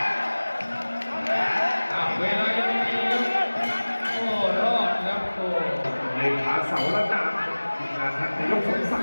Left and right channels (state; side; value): inverted; both; correlation -1.00